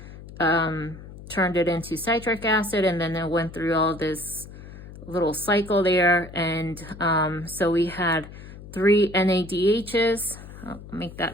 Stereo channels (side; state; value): left; noise; hum, 15 dB below the sound